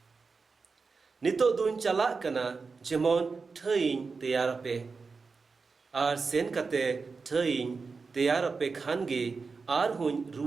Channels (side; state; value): left; quieter; 4.6 dB